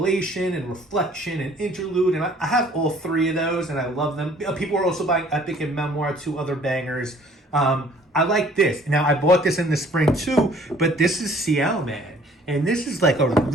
and Reflection and Interlude, and I have all three of those, and I love them. People are also buying Epic and Memoir, two other bangers. I like this. Now, I bought this in the spring too, but this is Ciel Man. And this is like a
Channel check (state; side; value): normal; both; correlation 0.56